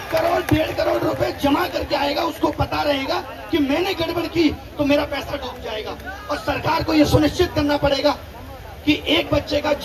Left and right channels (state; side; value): identical; both; correlation 1.00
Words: करोड़ 1.5 करोड़ रुपए जमा करके आएगा, उसको पता रहेगा कि मैंने गड़बड़ की तो मेरा पैसा डूब जाएगा। और सरकार को यह सुनिश्चित करना पड़ेगा कि एक बच्चे का